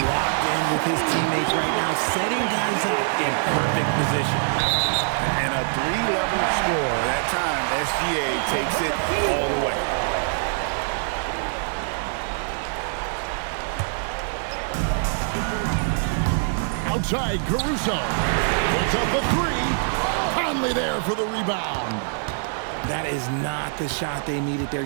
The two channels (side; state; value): left; silent; digital silence